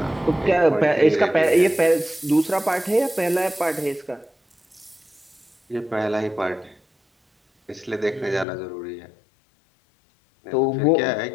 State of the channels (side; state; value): right; drops out; at 8.5 s